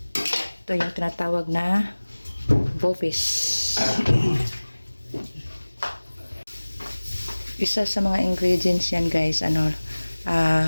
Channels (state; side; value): inverted; both; correlation -1.00